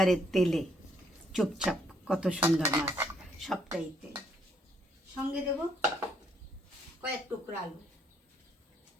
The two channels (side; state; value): both; normal; correlation 0.70